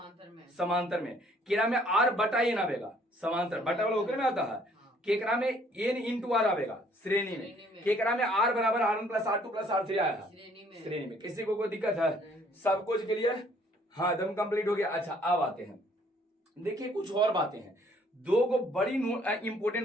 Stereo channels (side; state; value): both; normal; correlation 0.61